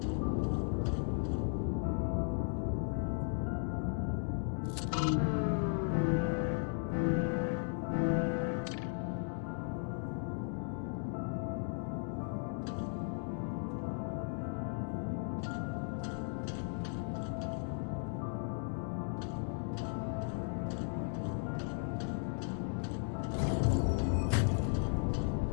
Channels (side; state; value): right; silent; 54 dB below the other